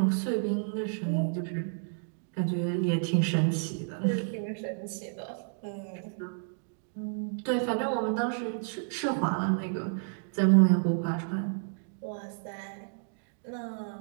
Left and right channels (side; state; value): left; silent; digital silence